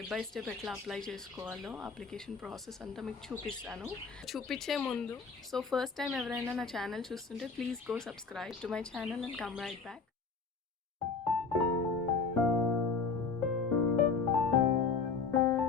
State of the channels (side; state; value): right; quieter; 4.9 dB